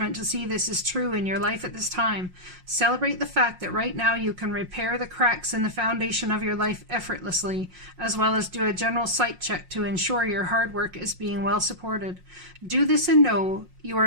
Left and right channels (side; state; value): left; late; 5.6 ms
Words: to see this is true in your life at this time. Celebrate the fact that right now you can repair the cracks in the foundation of your life effortlessly, as well as do a general site check to ensure your hard work is being well supported. Do this and know you